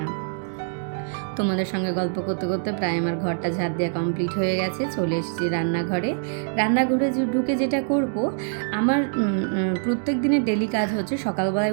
তোমাদের সঙ্গে গল্প করতে করতে প্রায় আমার ঘরটা ঝাড় দেওয়া কমপ্লিট হয়ে গেছে। চলে এসেছি রান্নাঘরে। রান্নাঘরে ঢুকে যেটা করব, আমার প্রত্যেক দিনের ডেলি কাজ হচ্ছে সকালবেলায়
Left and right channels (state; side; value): silent; left; digital silence